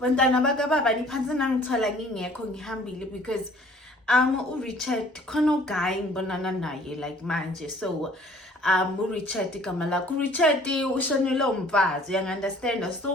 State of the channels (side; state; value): both; normal; correlation 0.54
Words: bakababa niphansi nangithola ngingekho ngihambile because uRichard khona uguy ngibonana naye like manje so uRichard igama lakho uRichard ushonile umfazi you understand